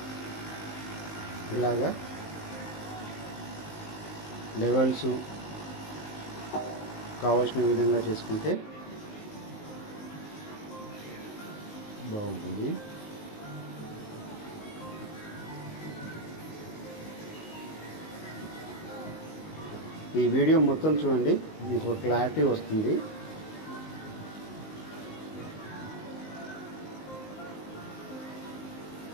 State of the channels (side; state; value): right; late; 19 ms